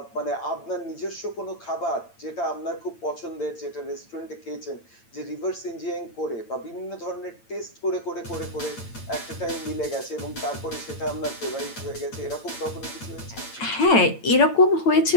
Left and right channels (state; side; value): late; right; 8.9 ms